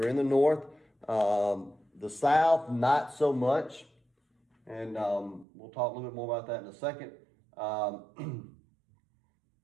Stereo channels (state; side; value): drops out; left; at 5.5 s